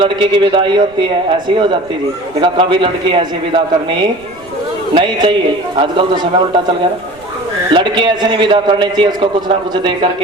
की विदाई होती है ऐसी हो जाती जी। देखा कभी लड़की ऐसी विदा करनी नहीं चाहिए। आजकल तो समय उल्टा चल गया ना। लड़की ऐसे नहीं विदा करनी चाहिए, उसको कुछ ना कुछ दे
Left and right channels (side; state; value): right; noise; rumble, 26 dB below the sound